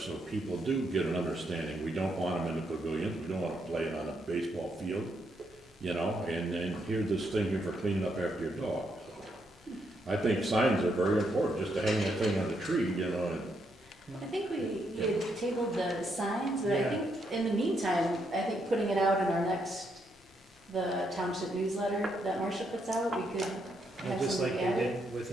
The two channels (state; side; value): normal; both; correlation 0.77